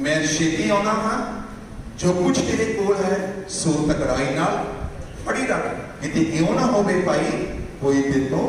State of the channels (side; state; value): both; identical; correlation 1.00